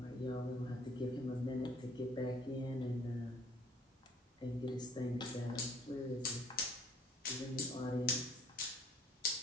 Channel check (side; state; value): both; normal; correlation 0.56